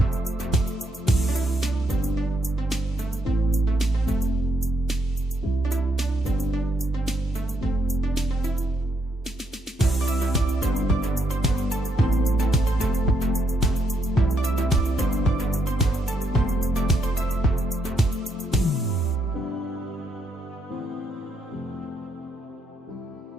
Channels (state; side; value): normal; both; correlation 0.76